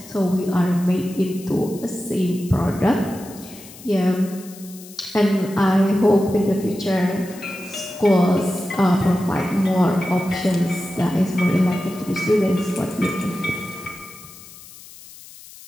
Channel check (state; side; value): noise; left; hiss, 19 dB below the sound